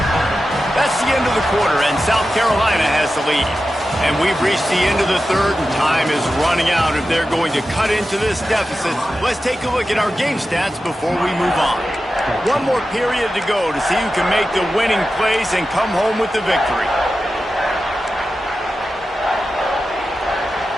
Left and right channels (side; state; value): both; normal; correlation 0.92